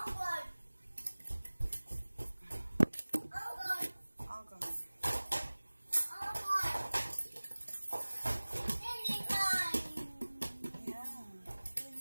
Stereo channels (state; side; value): inverted; both; correlation -1.00